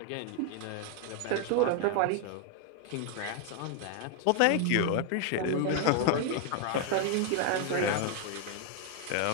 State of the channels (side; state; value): both; different; correlation 0.01